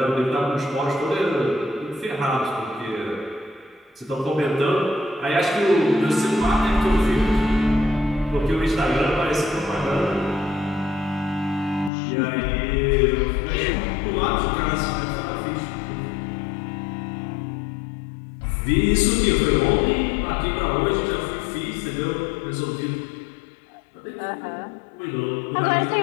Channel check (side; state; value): right; drops out; at 11.9 s